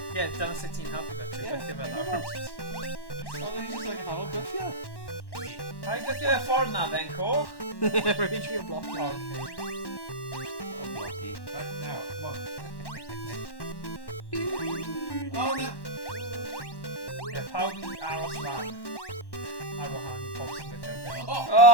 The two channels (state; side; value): late; right; 1.1 ms